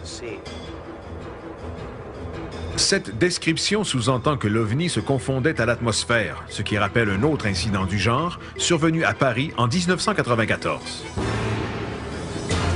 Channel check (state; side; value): identical; both; correlation 1.00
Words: Cette description sous-entend que l'OVNI se confondait à l'atmosphère, ce qui rappelle un autre incident du genre survenu à Paris en 1994.